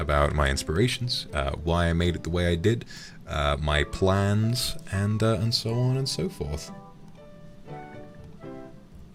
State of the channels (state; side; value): identical; both; correlation 1.00